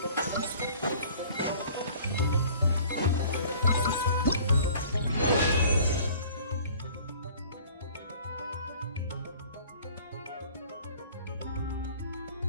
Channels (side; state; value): both; inverted; correlation -0.50